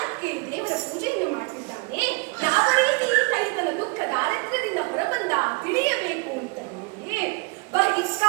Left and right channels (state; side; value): quieter; left; 29.5 dB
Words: ದೇವರ ಪೂಜೆಯನ್ನು ಮಾಡ್ತಿದ್ದಾನೆ. ಯಾವ ರೀತಿ ಈತ ಈತನ ದುಃಖ ದಾರಿದ್ರ್ಯದಿಂದ ಹೊರಬಂದ ತಿಳಿಯಬೇಕು ಅಂತ ಹೇಳಿ